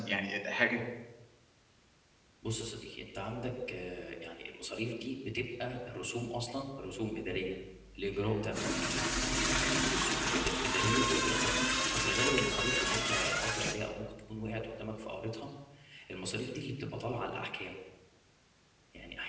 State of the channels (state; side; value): identical; both; correlation 1.00